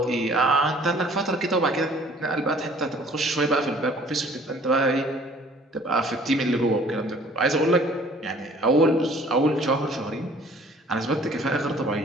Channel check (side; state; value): both; normal; correlation 0.54